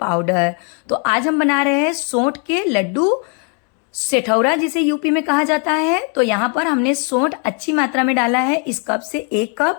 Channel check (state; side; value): quieter; right; 38.9 dB